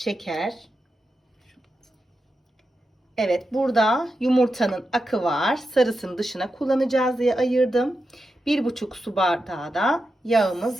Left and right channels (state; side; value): normal; both; correlation 0.89